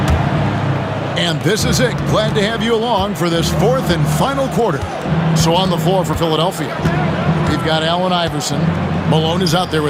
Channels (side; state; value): both; identical; correlation 1.00